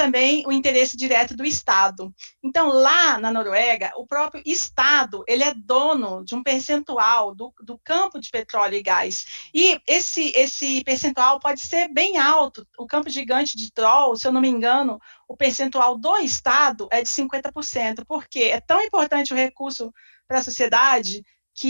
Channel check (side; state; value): both; inverted; correlation -1.00